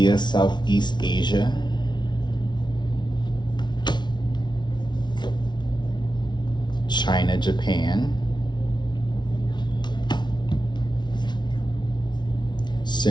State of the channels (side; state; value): right; late; 0.21 ms